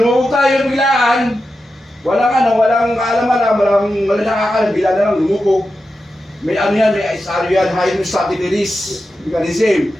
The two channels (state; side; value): normal; both; correlation 0.90